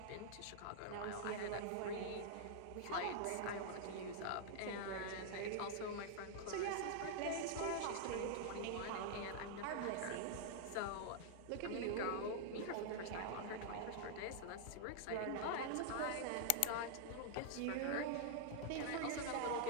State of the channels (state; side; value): different; both; correlation -0.01